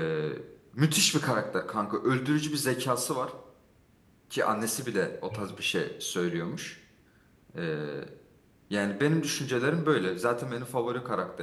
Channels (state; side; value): identical; both; correlation 1.00